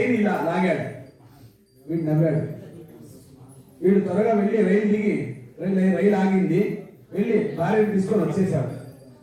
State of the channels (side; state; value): both; identical; correlation 1.00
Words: ఇలా లాగాడు. వీడు నవ్వాడు. వీడు త్వరగా వెళ్ళి రైలు దిగి రైలు ఆగింది, వెళ్ళి భార్యను తీసుకొని వచ్చేసాడు.